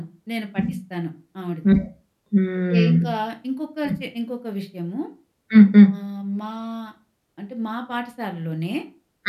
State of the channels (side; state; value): both; identical; correlation 1.00